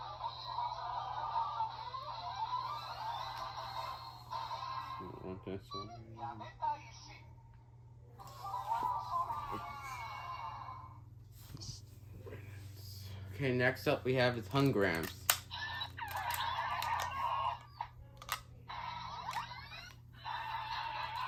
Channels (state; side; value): identical; both; correlation 1.00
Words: Want this one. Okay, next up we have his Hungrams.